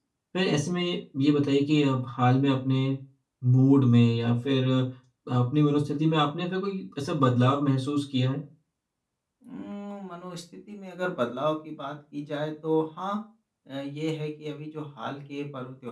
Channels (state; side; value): identical; both; correlation 1.00